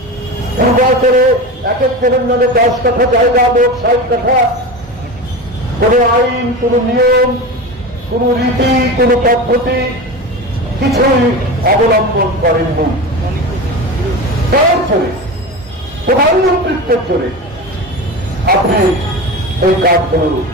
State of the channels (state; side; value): normal; both; correlation 0.26